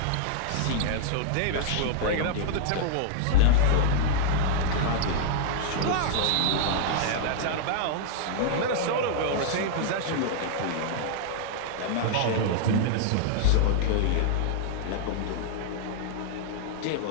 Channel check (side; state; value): both; different; correlation -0.01